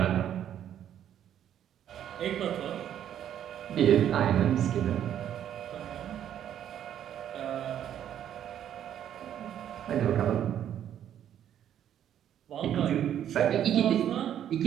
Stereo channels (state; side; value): quieter; left; 10.3 dB